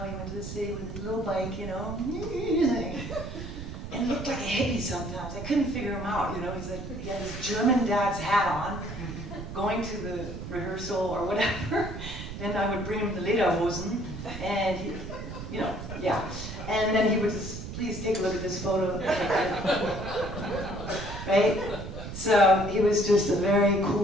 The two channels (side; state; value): right; noise; rumble, 9 dB below the sound